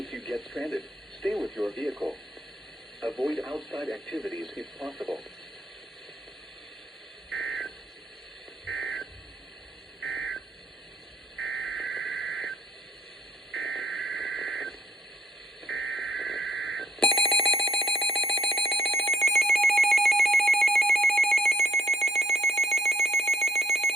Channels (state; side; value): normal; both; correlation 0.68